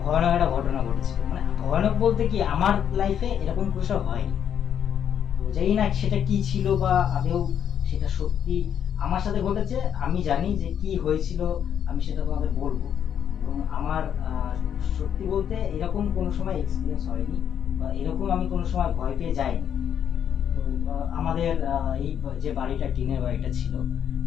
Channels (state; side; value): quieter; right; 8.9 dB